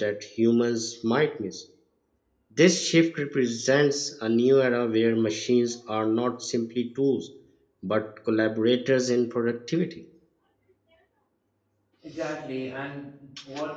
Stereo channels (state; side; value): identical; both; correlation 1.00